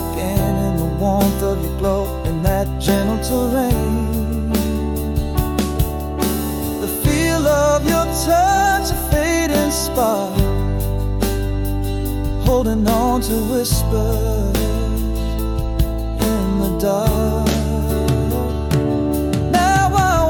in the warmth of your glow, in that gentle terrain. The feel of your touch, a fading spark, holding on to whispers in the dark. Now I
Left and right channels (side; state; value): both; identical; correlation 1.00